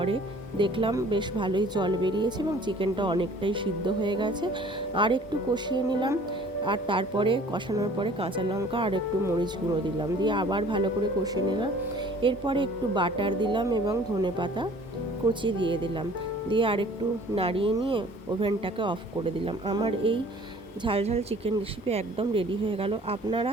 দেখলাম বেশ ভালোই জল বেরিয়েছে এবং চিকেনটা অনেকটাই সিদ্ধ হয়ে গেছে। আর একটু কষিয়ে নিলাম, আর তারপরে কষানোর পরে কাঁচা লঙ্কা আর একটু মরিচ গুঁড়ো দিলাম, দিয়ে আবার ভালো করে কষিয়ে নিলাম। এরপরে একটু বাটার দিলাম এবং ধনেপাতা কুচি দিয়ে দিলাম, দিয়ে আর একটু নাড়িয়ে নিয়ে ওভেনটাকে অফ করে দিলাম। আমার এই ঝাল ঝাল চিকেন রেসিপি একদম রেডি হয়ে গেল। আপনারা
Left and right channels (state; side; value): normal; both; correlation 0.51